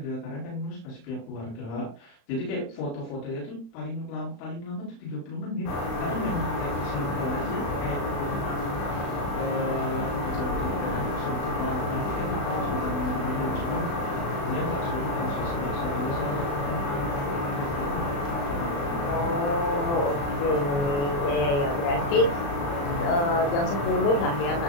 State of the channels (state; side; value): late; right; 35 ms